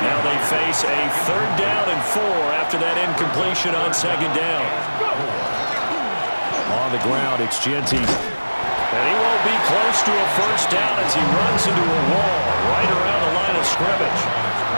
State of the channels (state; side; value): inverted; both; correlation -1.00